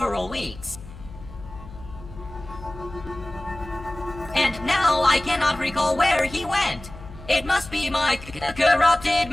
weeks. And now I cannot recall where he went. It must be my corrupted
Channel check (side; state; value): left; noise; hum, 16 dB below the sound